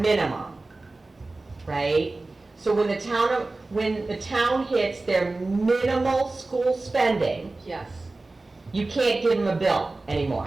right? So when the town hits their minimal school spending, Yes. you can't give them a bill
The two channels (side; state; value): left; quieter; 3.2 dB